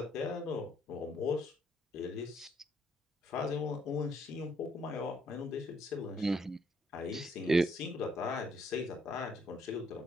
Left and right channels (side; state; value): both; normal; correlation 0.69